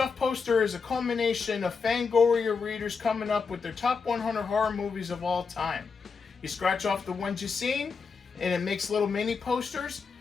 poster is a culmination of Fangoria readers coming up with their top 100 horror movies of all time. You scratch off the ones you've seen, and it makes little mini posters,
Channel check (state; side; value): quieter; right; 5.2 dB